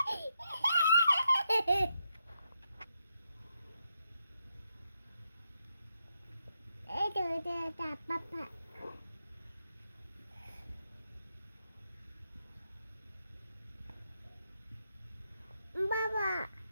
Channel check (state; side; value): inverted; both; correlation -0.82